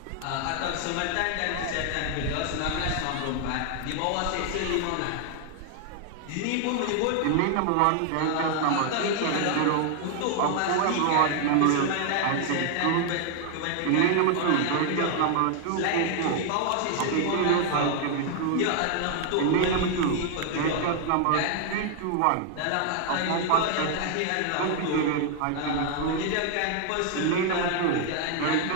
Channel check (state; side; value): different; both; correlation 0.00